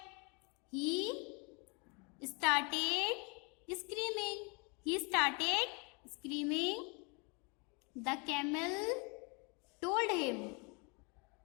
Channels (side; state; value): right; quieter; 32.1 dB